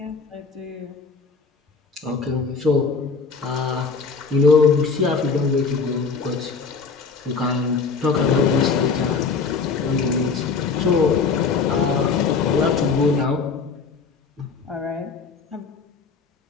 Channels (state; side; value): quieter; right; 4.9 dB